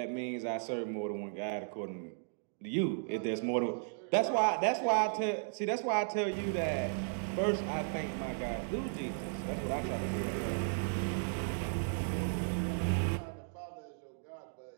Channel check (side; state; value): left; silent; digital silence